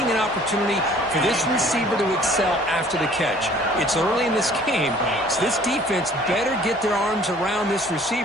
an opportunity for this receiver to excel after the catch. It's early in this game, so this defense better get their arms around this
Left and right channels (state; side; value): normal; both; correlation 0.54